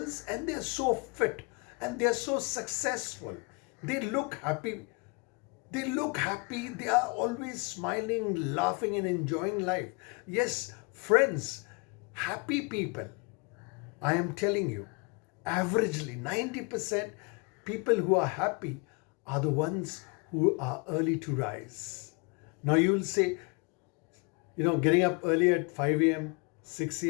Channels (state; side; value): quieter; right; 31.9 dB